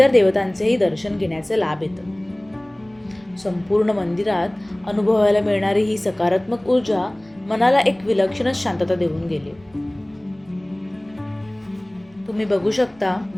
देवतांचेही दर्शन घेण्याचे लाभ येतं. संपूर्ण मंदिरात अनुभवायला मिळणारी ही सकारात्मक ऊर्जा मनाला एक विलक्षणच शांतता देऊन गेली. तुम्ही बघू शकता,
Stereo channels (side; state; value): right; noise; rumble, 29 dB below the sound